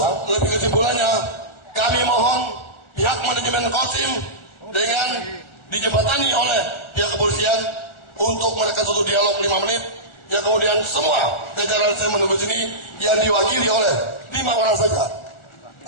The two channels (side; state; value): right; late; 1.4 ms